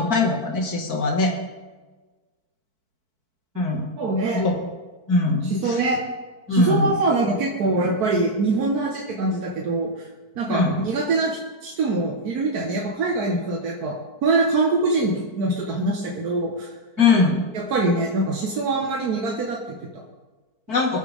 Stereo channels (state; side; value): late; left; 4.5 ms